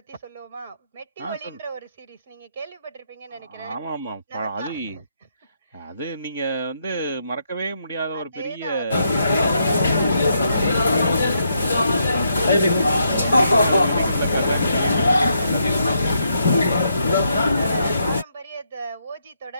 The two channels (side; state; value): both; inverted; correlation -0.78